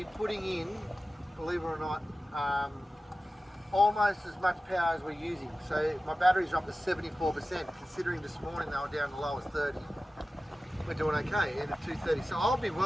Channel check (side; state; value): both; normal; correlation 0.95